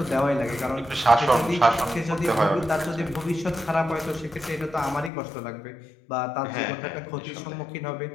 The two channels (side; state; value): right; drops out; at 5.1 s